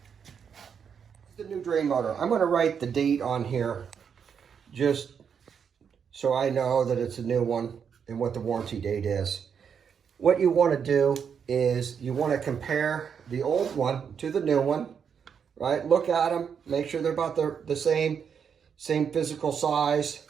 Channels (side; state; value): left; quieter; 7.1 dB